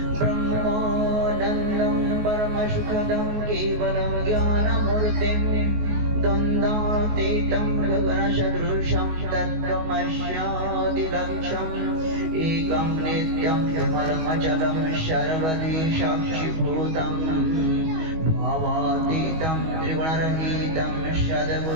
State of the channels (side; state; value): left; late; 19 ms